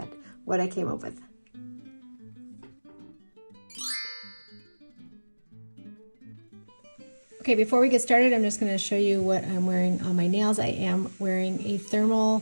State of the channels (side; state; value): both; inverted; correlation -1.00